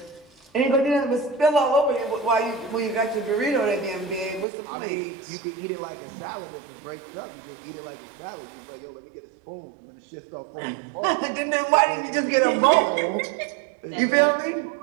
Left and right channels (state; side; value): drops out; left; at 4.5 s